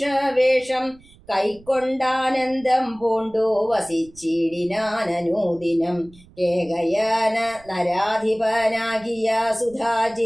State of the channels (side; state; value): right; noise; rumble, 25 dB below the sound